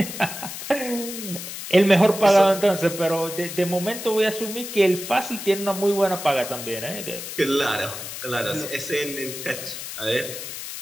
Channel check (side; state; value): left; noise; hiss, 9 dB below the sound